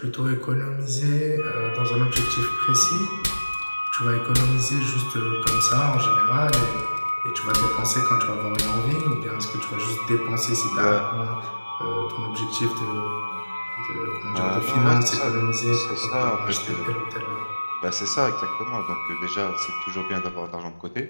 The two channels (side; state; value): both; inverted; correlation -1.00